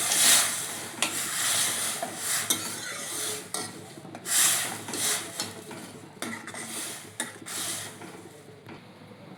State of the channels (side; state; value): both; identical; correlation 1.00